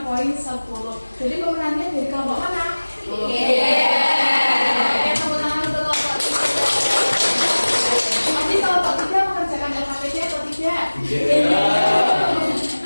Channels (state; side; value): inverted; both; correlation -1.00